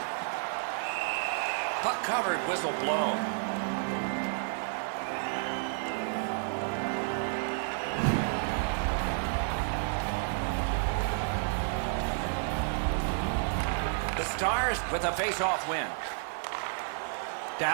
Puck covered, whistle blown. The Stars with a face-off win.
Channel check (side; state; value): left; silent; digital silence